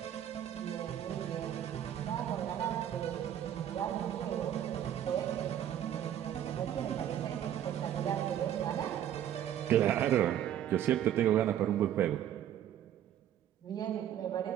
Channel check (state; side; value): quieter; left; 10.8 dB